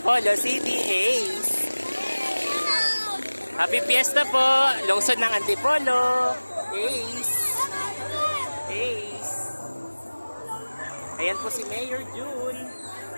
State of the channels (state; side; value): inverted; both; correlation -1.00